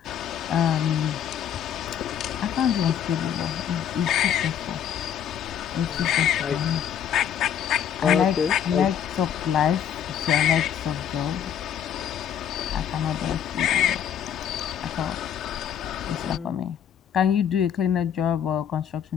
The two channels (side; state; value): right; quieter; 9.1 dB